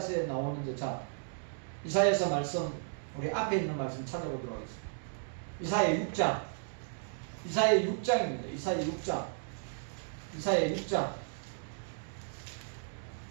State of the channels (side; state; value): left; silent; digital silence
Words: 나오는 데, 자, 이사야서 말씀, 우리 앞에 있는 말씀 찾아보도록 하겠습니다. 이사야 6장. 이사야 6장입니다. 이사야 6장.